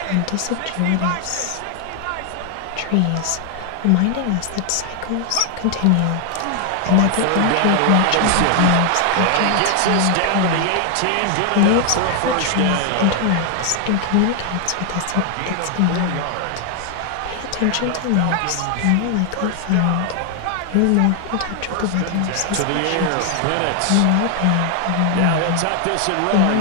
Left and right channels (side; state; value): both; different; correlation 0.00